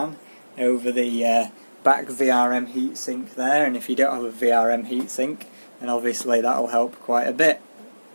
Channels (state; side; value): inverted; both; correlation -1.00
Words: over the back VRM heatsink there, and if you don't have a VRM heatsink, then obviously that will help quite a bit.